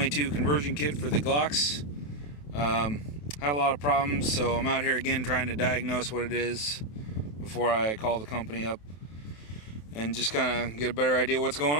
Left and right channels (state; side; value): late; right; 27 ms